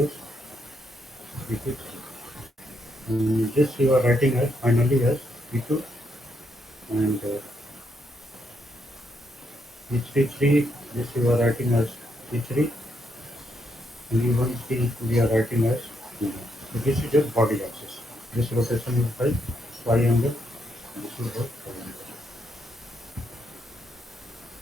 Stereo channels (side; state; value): both; normal; correlation 0.78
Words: V2, and this you are writing as finally as V2, and V33, this you are writing as V3, and V1C we are writing as V1. So this is your body axis. This rotation is by phi angle. This is by phi angle.